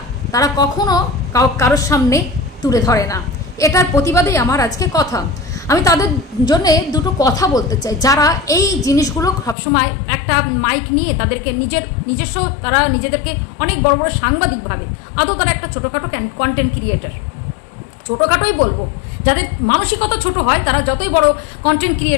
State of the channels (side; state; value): right; drops out; at 9.6 s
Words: তারা কখনো কারোর সামনে তুলে ধরে না। এটার প্রতিবাদেই আমার আজকে কথা। আমি তাদের জন্য দুটো কথা বলতে চাই, যারা এই জিনিসগুলো সবসময় একটা মাইক নিয়ে তাদেরকে নিজস্ব তারা নিজেদেরকে অনেক বড় বড় সাংবাদিক ভাবে, আদৌ তারা একটা ছোটোখাটো কন্টেন্ট ক্রিয়েটার, ছোটোখাটোই বলবো, যাদের মানসিকতা ছোট হয় তারা যতই বড় কন্টেন্ট